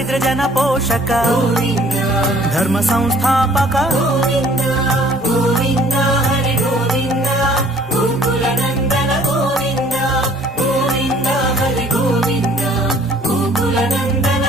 జన పోషక గోవింద ధర్మ సంస్థాపక గోవింద గోవింద హరి గోవింద గోకుల నందన గోవింద గోవింద హరి గోవింద గోకుల నందన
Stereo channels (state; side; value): normal; both; correlation 0.56